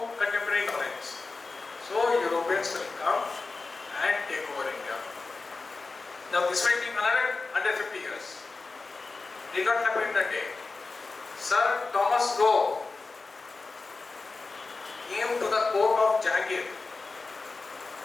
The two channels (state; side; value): quieter; right; 3.9 dB